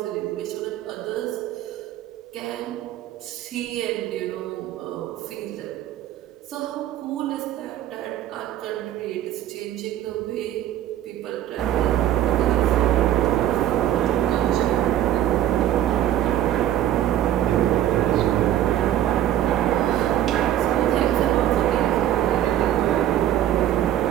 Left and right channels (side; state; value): left; quieter; 12.0 dB